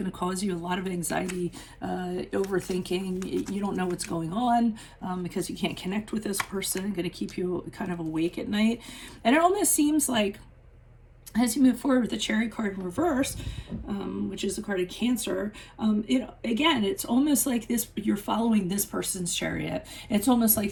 to cause you a lot of anxiety, overthinking. You don't know what's going on because you can't connect with this person, going to keep you kind of awake at night. And it almost seems like as you move forward with the Chariot card in reverse, which is the card of Cancer, it's almost like you're following this person's chariot. It's almost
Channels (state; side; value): identical; both; correlation 1.00